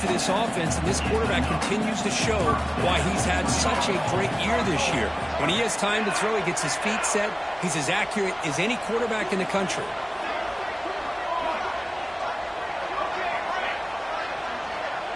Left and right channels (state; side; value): identical; both; correlation 1.00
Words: this offense, and this quarterback continues to show why he's had such a great year this year. When he has time to throw, he gets his feet set. He's as accurate as any quarterback in the country.